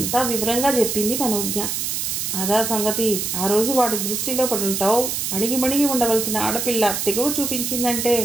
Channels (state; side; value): noise; right; hiss, 2 dB below the sound